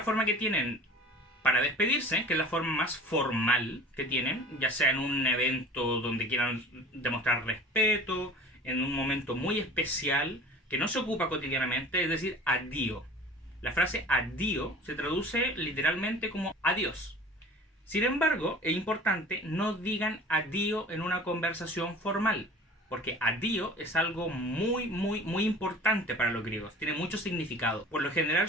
forma que tienen para despedirse, que es la forma más formal que tienen, ya sea en un evento donde quieran demostrar respeto, en un momento muy especial, que no se ocupa cotidianamente, es decir, addio. La frase addio se traduce literalmente como adiós. Sin embargo, es importante no digan addio en una conversación formal, porque addio es algo muy importante para los griegos, tiene mucho significado. Por lo general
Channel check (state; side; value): normal; both; correlation 0.43